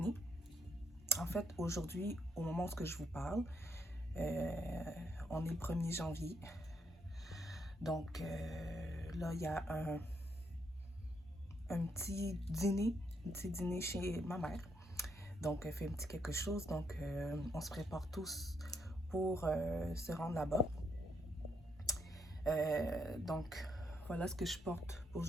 En fait, aujourd'hui, au moment où je vous parle, on est le 1er janvier. Donc là, il y a un petit dîner chez ma mère. Donc, elle fait un petit quelque chose. Donc, on se prépare tous pour se rendre là-bas. Donc, voilà ce que je porte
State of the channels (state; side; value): normal; both; correlation 0.75